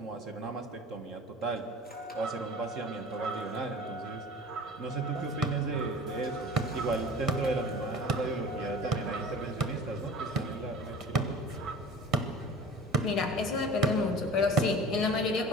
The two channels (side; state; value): both; normal; correlation 0.41